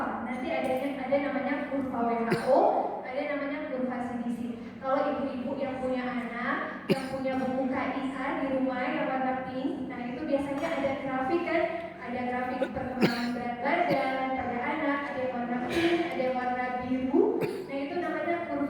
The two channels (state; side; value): identical; both; correlation 1.00